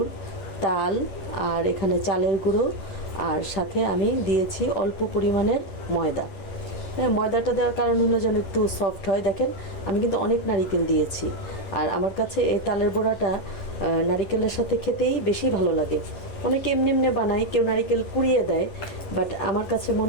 তাল, আর এখানে চালের গুঁড়ো, আর সাথে আমি দিয়েছি অল্প পরিমাণের ময়দা। হ্যাঁ, ময়দাটা দেওয়ার কারণ হলো যেন একটু সফট হয়। দেখেন, আমি কিন্তু অনেক নারকেল দিয়েছি। আর আমার কাছে এই তালের বড়াটা নারকেলের সাথে খেতেই বেশি ভালো লাগে। অনেকে এমনি এমনি বানায়, কেউ নারকেল কুড়িয়ে দেয়, বাট আমার কাছে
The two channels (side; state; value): right; late; 10 ms